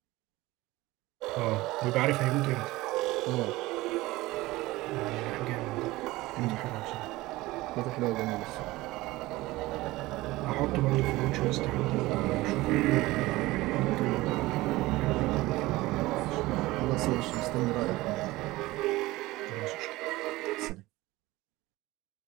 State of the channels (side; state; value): left; quieter; 19.2 dB